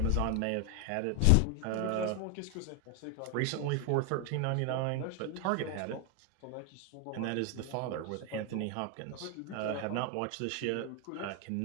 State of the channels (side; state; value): both; different; correlation 0.01